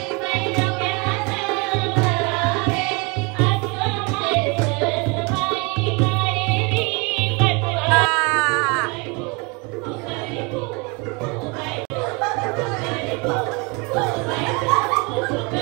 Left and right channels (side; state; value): left; quieter; 29.4 dB